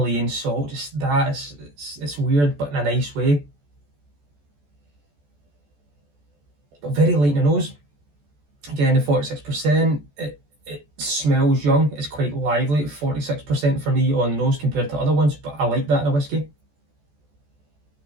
salt, just that. It's weird, but in a nice way. But very light in the nose. Again, the 46%, it smells young. It's quite lively at 46% for me on the nose compared to other ones, but I like that in a whiskey.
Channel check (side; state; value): left; late; 14 ms